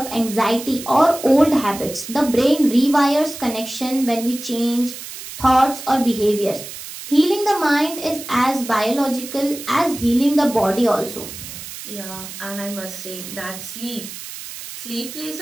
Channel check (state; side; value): noise; right; hiss, 11 dB below the sound